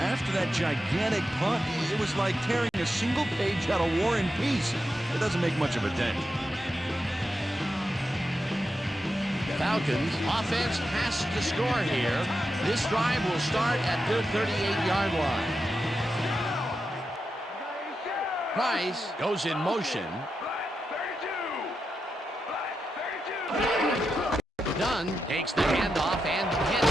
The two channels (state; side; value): normal; both; correlation 0.88